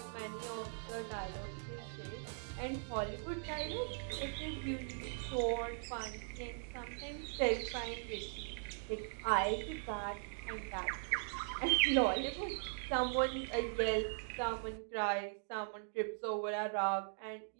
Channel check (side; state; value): left; silent; digital silence